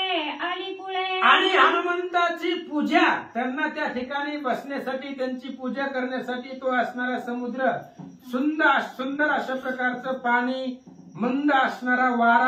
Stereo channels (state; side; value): identical; both; correlation 1.00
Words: आली कुळे. आणि हनुमंताची पूजा, त्यांना त्या ठिकाणी बसण्यासाठी, त्यांची पूजा करण्यासाठी तो असणारा समुद्र, सुंदर अशा प्रकारचं पाणी, मंद असणारा